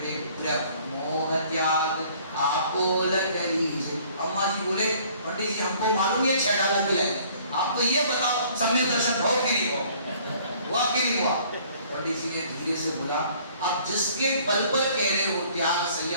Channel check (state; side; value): inverted; both; correlation -0.57